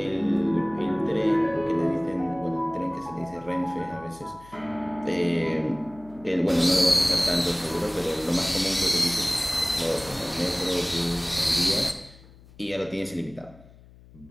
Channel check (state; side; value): noise; left; hum, 23 dB below the sound